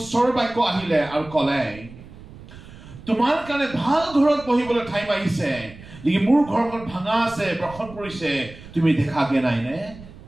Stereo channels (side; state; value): right; noise; rumble, 18 dB below the sound